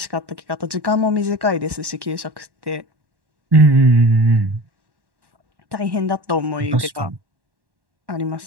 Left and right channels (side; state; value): left; late; 1.1 ms